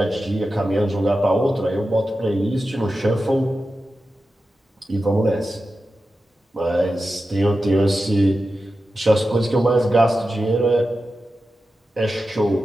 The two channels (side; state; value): both; normal; correlation 0.92